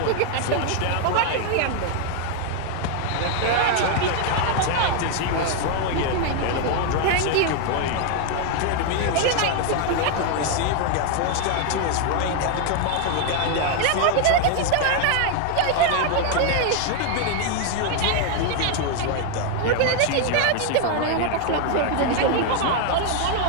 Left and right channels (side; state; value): both; different; correlation 0.00